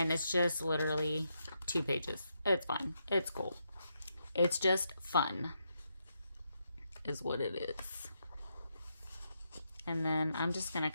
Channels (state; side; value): inverted; both; correlation -0.81